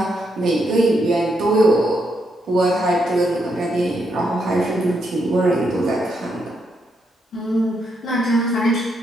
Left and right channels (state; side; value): normal; both; correlation 0.79